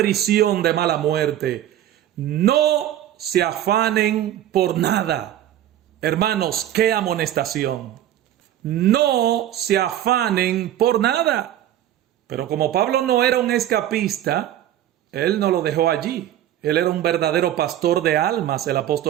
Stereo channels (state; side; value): quieter; left; 12.0 dB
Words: de mala muerte: no se afanen por nada. Hermanos, qué amonestación. No se afanen por nada. Pero como Pablo no era un escapista, él no lo dejó allí. Él era un verdadero pastor de almas, el